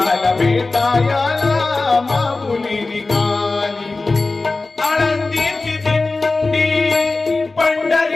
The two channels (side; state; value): right; quieter; 3.5 dB